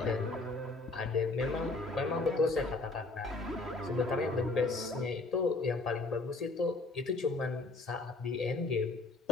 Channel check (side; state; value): right; quieter; 3.3 dB